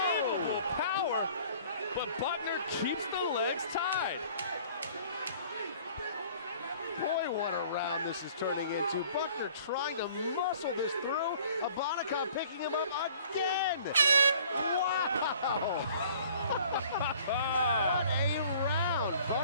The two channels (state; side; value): inverted; both; correlation -0.53